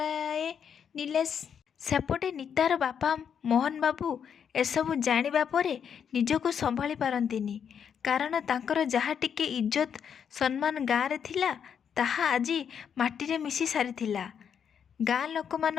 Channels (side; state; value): right; quieter; 7.7 dB